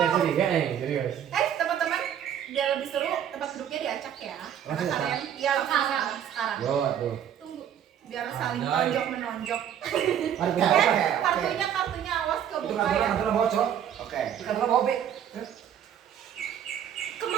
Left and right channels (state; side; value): quieter; left; 9.5 dB